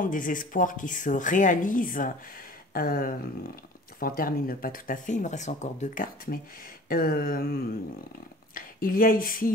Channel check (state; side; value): normal; both; correlation 0.45